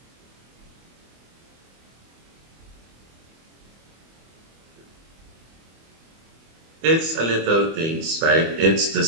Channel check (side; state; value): left; late; 25 ms